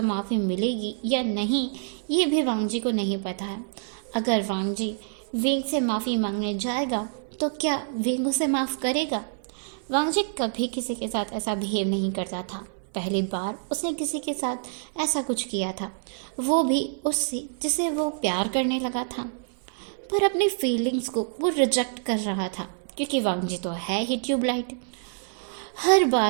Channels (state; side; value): silent; left; 60 dB below the other